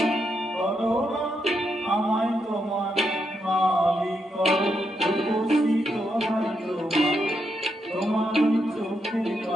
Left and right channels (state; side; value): normal; both; correlation 0.81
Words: করো না আমায় তোমার মালিক করো। রূপসী দোহাই তোমায়, তোমার ওই চোখের